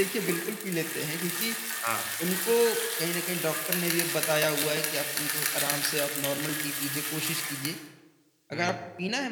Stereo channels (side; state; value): both; identical; correlation 1.00